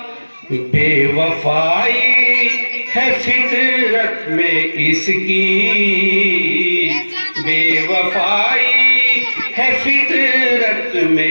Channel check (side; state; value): both; inverted; correlation -1.00